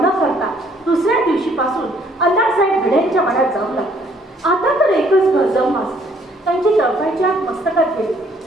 करता दुसऱ्या दिवशीपासून अण्णासाहेब भिडेंच्या वाड्यात जाऊ लागले. आता तर एकच घर जाऊन त्यांची चळकायची आत मस्तकात गेली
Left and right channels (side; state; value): both; normal; correlation 0.63